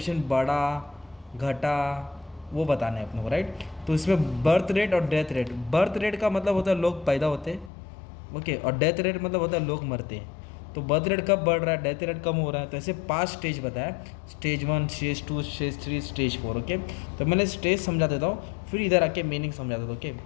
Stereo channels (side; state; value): right; drops out; at 7.7 s